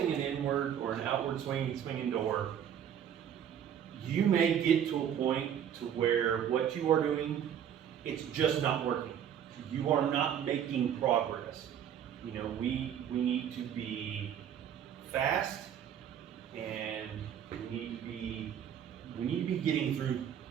an inward or an outward swinging door, you may get to a point to where what you are doing, it's just not working. You are not making progress. You know, we need to be fast, and we need to be getting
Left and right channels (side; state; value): left; quieter; 9.2 dB